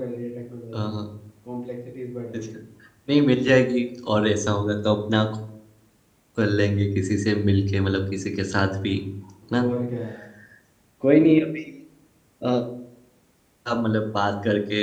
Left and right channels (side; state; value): both; identical; correlation 1.00